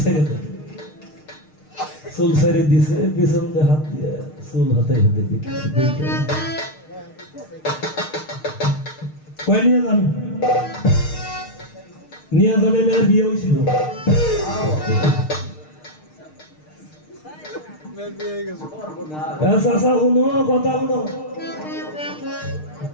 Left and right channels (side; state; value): right; late; 6.6 ms